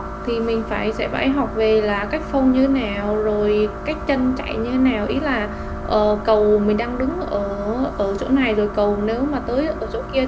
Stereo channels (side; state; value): both; identical; correlation 1.00